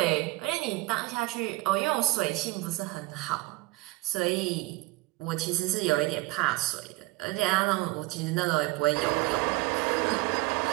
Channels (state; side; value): quieter; left; 20.9 dB